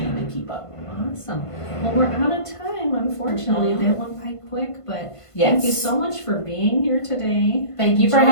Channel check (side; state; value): right; late; 1.5 ms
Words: and keep up. Awesome. Well, we're out of time, unfortunately. That went by quick, but Yes. thank you so much for being here today. Thank you for